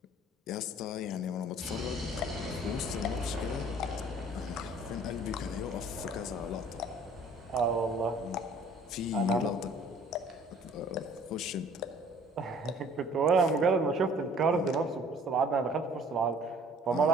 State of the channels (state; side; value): normal; both; correlation 0.54